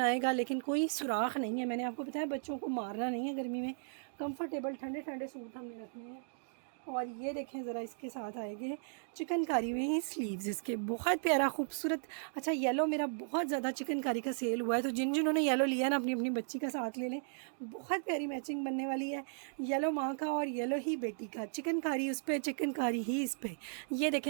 आएगा, लेकिन कोई सुराख नहीं है। मैंने आपको बताया बच्चों को मारना नहीं है गर्मी में, कंफर्टेबल ठंडे ठंडे सूट हमने रखने हैं। और ये देखें ज़रा, इसके साथ आएंगे चिकनकारी में ही स्लीव्स इसके, बहुत प्यारा खूबसूरत। अच्छा येलो मेरा बहुत ज़्यादा चिकनकारी का सेल हुआ है, तो जिन्होंने येलो लिया ना अपनी अपनी बच्ची का साथ ले लें, बहुत प्यारी मैचिंग बनने वाली है। येलो माँ का और येलो ही बेटी का, चिकनकारी उस पर, चिकनकारी ही इस पर। ये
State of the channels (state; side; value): silent; left; digital silence